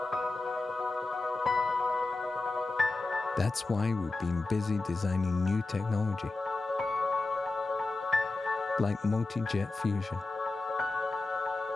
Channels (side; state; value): right; quieter; 3.3 dB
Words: That's why we've been busy designing new technology, like multi-jet fusion.